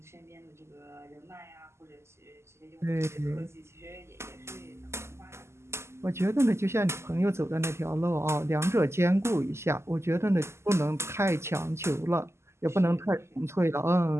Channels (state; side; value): late; left; 0.13 ms